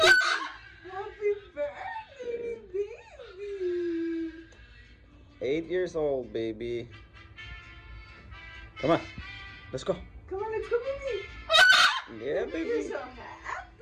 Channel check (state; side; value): identical; both; correlation 1.00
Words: Happy birthday, baby. 8 years old, baby. Come on. Let's go. Come on, let's go, baby. Yeah, You're baby. so